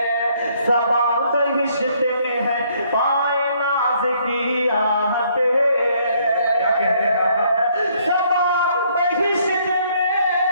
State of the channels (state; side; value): inverted; both; correlation -0.67